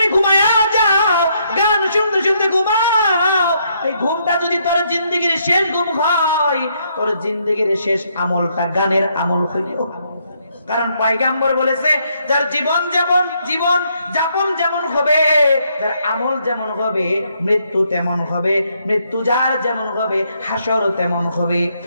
ঘুমায়া যাও, গান শুনতে শুনতে ঘুমাও, এই ঘুমটা যদি তোর জিন্দেগির শেষ ঘুম হয়, তোর জিন্দেগির শেষ আমলটা গানের আমল হইল। কারণ পয়গম্বর বলেছে, যার জীবন যাপন যেমন হবে, যার আমল যেমন হবে, মৃত্যু তেমন হবে। মৃত্যু যার যেমন হবে, হাসর তেমন হবে।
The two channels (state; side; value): inverted; both; correlation -0.74